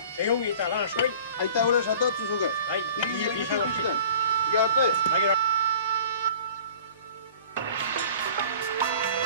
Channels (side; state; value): both; inverted; correlation -0.46